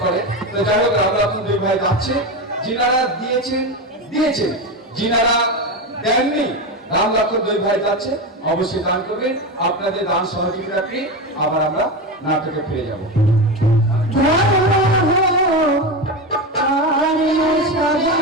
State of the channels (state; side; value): normal; both; correlation 0.18